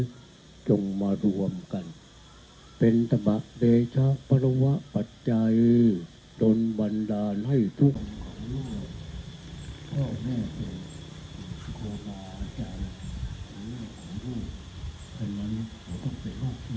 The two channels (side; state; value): both; identical; correlation 1.00